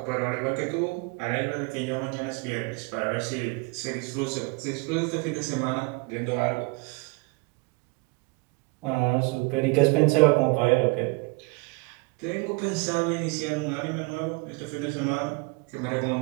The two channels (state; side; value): quieter; left; 28.8 dB